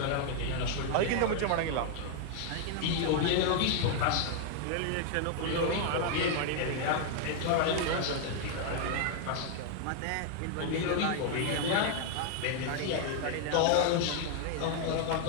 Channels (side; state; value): both; different; correlation 0.00